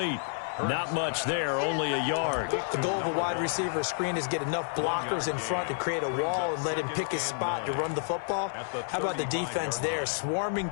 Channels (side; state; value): right; silent; digital silence